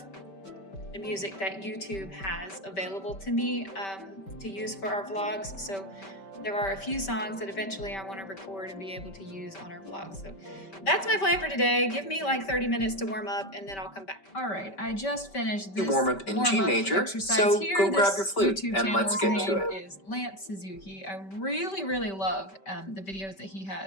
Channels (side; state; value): right; late; 5.2 ms